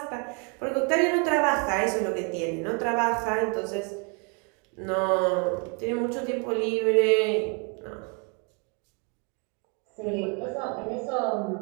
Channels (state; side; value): quieter; left; 35.1 dB